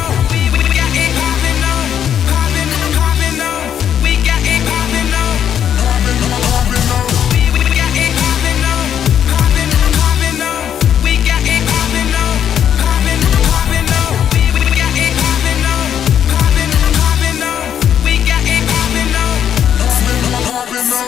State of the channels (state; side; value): quieter; right; 9.2 dB